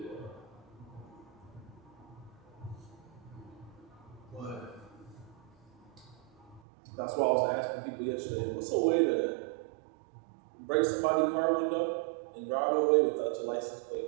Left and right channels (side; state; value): left; drops out; at 6.6 s